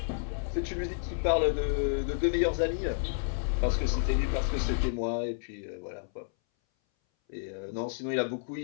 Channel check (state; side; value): silent; right; 57 dB below the other